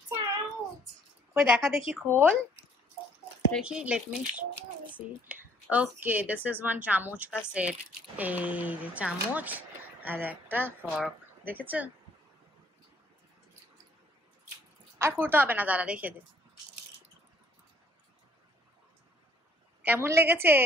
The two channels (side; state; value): both; normal; correlation 0.62